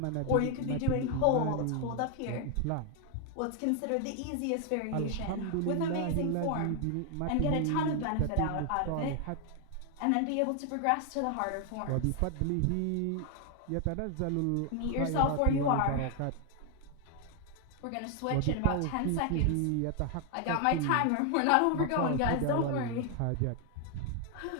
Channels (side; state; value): both; different; correlation 0.00